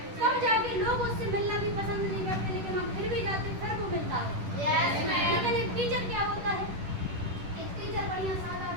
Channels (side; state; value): left; late; 10 ms